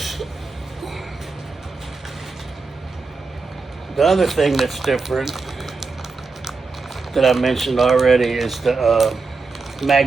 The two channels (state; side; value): quieter; left; 4.2 dB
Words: The other thing that's different that I mentioned already is the